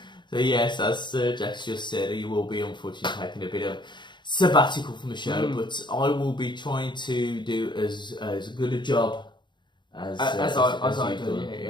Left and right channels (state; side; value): late; right; 0.22 ms